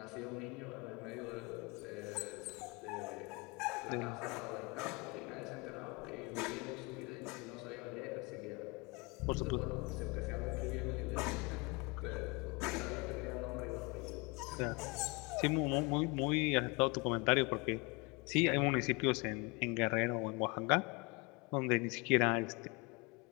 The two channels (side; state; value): right; quieter; 27.8 dB